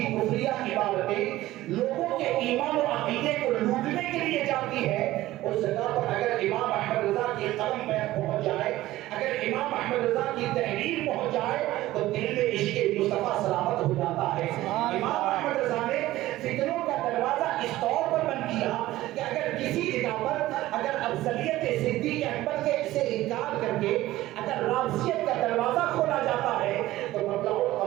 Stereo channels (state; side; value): quieter; left; 16.2 dB